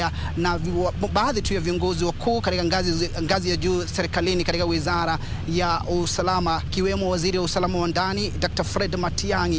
na baadhi tu ya viongozi wakuu katika ngazi ya juu serikalini katika wizara ya usalama, kiwemo waziri wa usalama wa ndani Dr. Fred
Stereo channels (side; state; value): both; identical; correlation 1.00